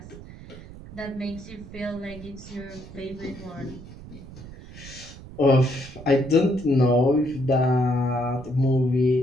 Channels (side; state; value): right; noise; rumble, 16 dB below the sound